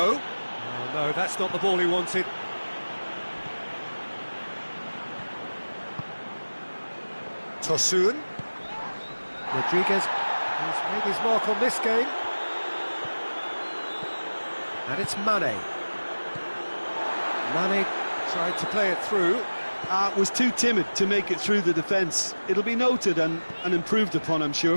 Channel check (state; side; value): inverted; both; correlation -1.00